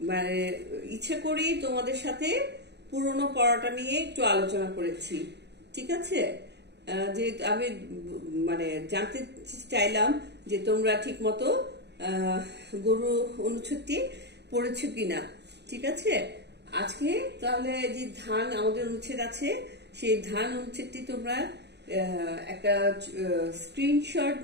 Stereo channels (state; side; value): late; left; 0.49 ms